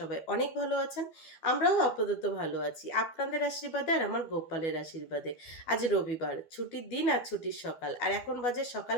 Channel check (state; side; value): late; right; 12 ms